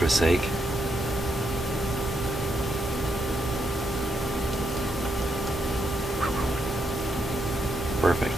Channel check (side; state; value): both; normal; correlation 0.79